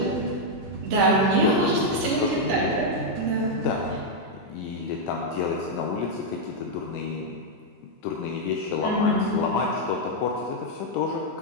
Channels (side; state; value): both; normal; correlation -0.01